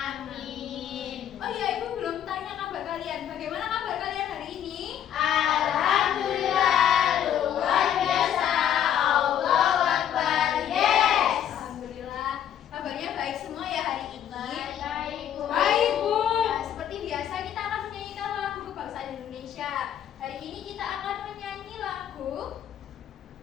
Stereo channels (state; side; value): quieter; right; 10.0 dB